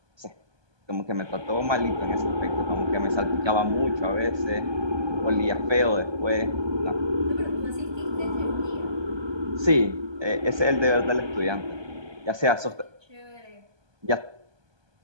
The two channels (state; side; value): late; left; 1.2 ms